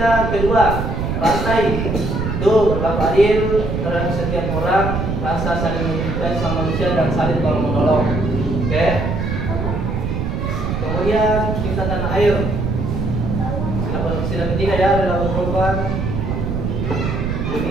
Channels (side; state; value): right; noise; rumble, 2 dB below the sound